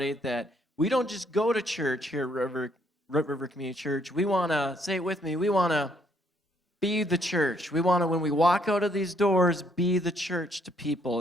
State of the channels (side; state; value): both; normal; correlation 0.69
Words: that we don't just go to church here at Root River Community Church. We want to, say it with me, we want to be the church. We want to, when we walk out of these doors, be the church to people